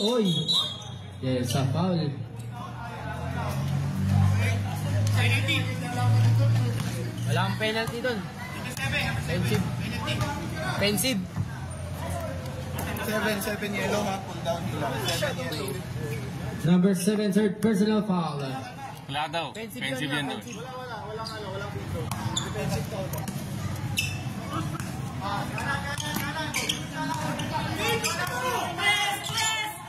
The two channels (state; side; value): identical; both; correlation 1.00